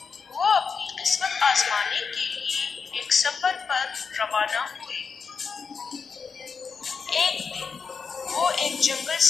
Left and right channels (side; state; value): right; quieter; 5.6 dB